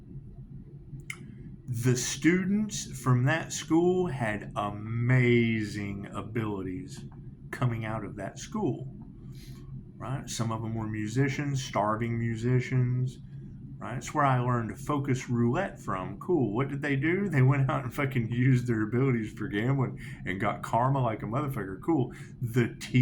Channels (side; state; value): both; identical; correlation 1.00